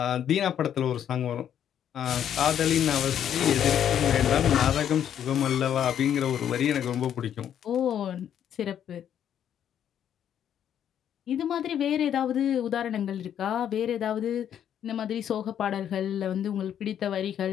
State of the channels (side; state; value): right; quieter; 9.6 dB